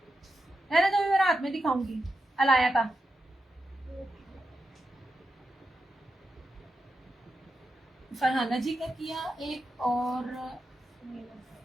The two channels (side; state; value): both; normal; correlation 0.87